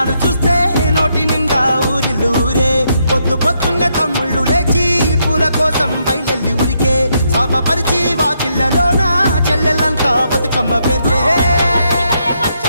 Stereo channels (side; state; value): both; inverted; correlation -0.78